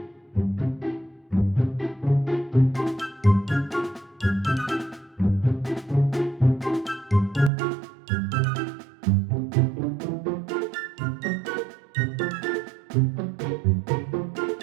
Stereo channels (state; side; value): drops out; left; at 7.5 s